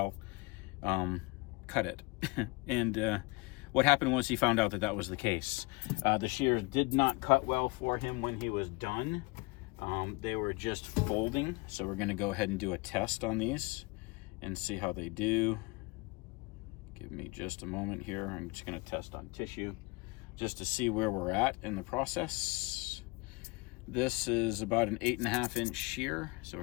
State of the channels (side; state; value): right; quieter; 26.3 dB